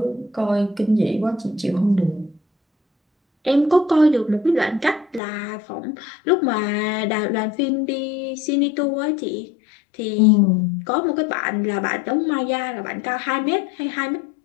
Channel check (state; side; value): drops out; right; at 5.2 s